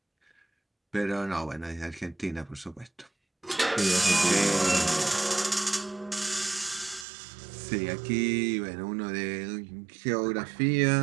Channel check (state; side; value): drops out; left; at 7.1 s